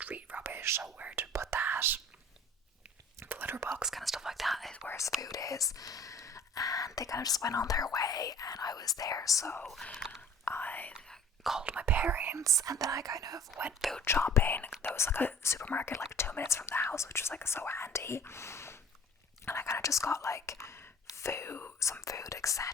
rubbish, so where to put that. The litter box, kind of stuff like that, is where his food is. And they kind of just went on their way, and I was there, so I called my parents, and then I kind of went food shopping. There was like a supermarket like 2 minutes from the house, which was like so handy. And I kind of just got like some food,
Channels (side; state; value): both; normal; correlation 0.47